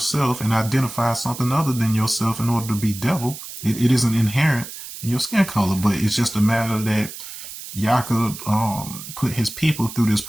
and identify something other than yourself in order to be devil. It isn't inherent in your skin color, but it's just a matter that Jacob put his people through this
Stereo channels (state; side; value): noise; right; hiss, 12 dB below the sound